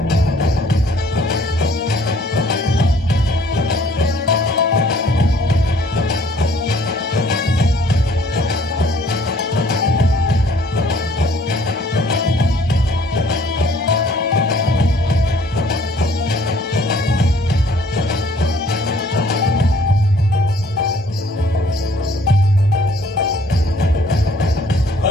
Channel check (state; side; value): normal; both; correlation 0.59